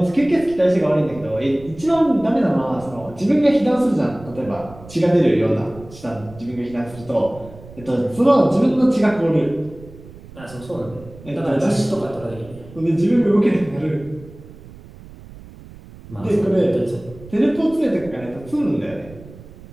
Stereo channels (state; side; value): noise; right; rumble, 19 dB below the sound